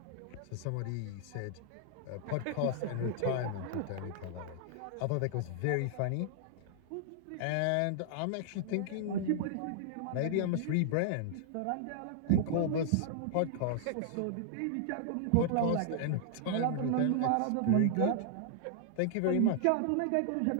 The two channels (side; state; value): both; different; correlation -0.01